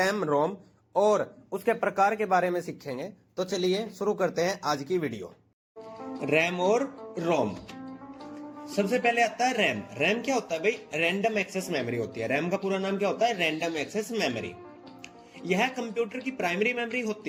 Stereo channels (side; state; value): both; identical; correlation 1.00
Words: रोम और उसके प्रकार के बारे में सीखेंगे। तो चलिए शुरू करते हैं आज की वीडियो। रैम और रोम। सबसे पहले आता है रैम। रैम क्या होता है भाई? रैंडम एक्सेस मेमोरी होती है। रैम का पूरा नाम क्या होता है? Random access memory. यह कंप्यूटर की प्राइमरी मेमोरी